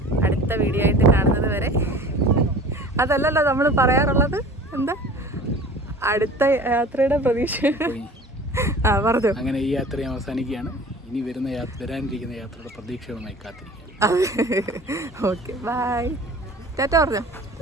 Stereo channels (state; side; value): normal; both; correlation 0.43